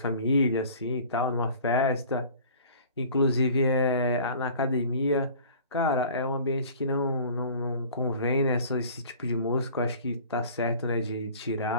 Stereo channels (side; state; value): both; inverted; correlation -0.46